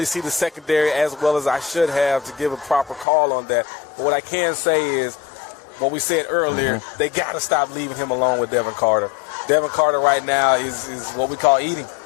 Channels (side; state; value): right; drops out; at 3.1 s